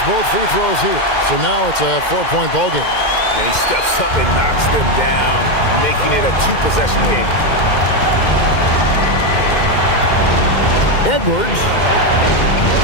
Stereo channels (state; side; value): late; right; 2.1 ms